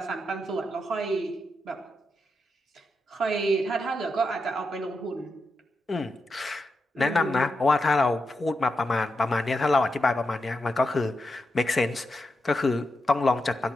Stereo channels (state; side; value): normal; both; correlation 0.86